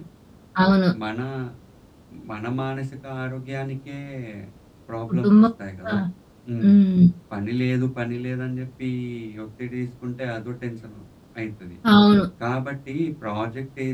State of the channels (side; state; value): both; identical; correlation 1.00